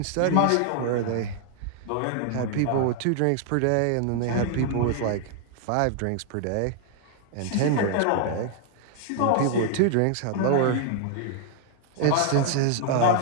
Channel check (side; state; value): both; different; correlation 0.00